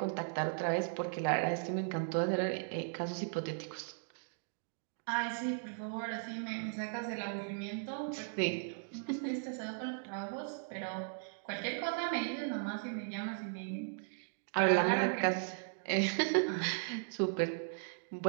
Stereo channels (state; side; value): silent; left; digital silence